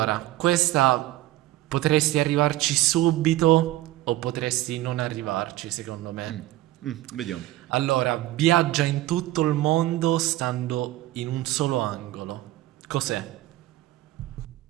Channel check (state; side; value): quieter; left; 16.0 dB